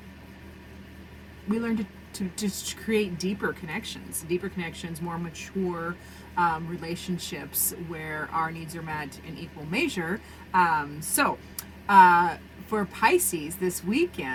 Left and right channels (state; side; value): identical; both; correlation 1.00